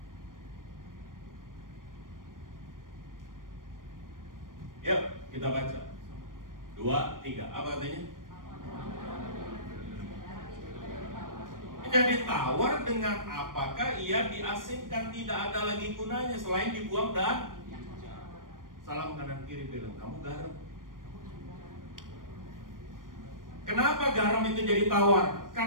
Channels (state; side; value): late; left; 0.90 ms